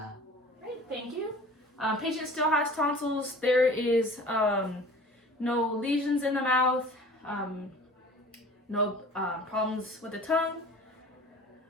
Great, thank you. Patient still has tonsils. There is no lesions in the mouth, no problems with the tongue.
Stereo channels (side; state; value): both; normal; correlation 0.44